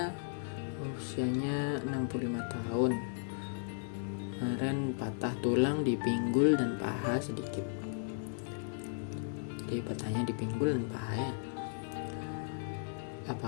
usianya 65 tahun. Kemarin patah tulang di pinggul dan paha sedikit. Jadi patahnya di pinggul dan paha ya.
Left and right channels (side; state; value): right; silent; digital silence